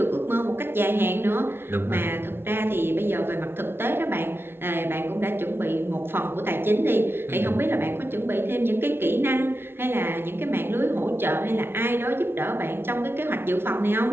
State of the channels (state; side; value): late; left; 0.11 ms